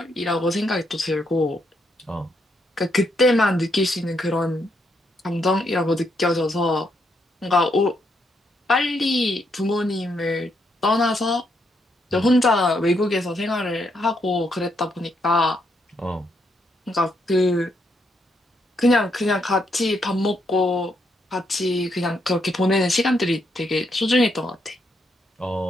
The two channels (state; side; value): normal; both; correlation 0.77